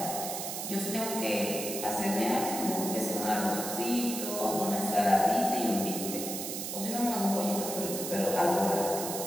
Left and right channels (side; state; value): right; noise; hiss, 5 dB below the sound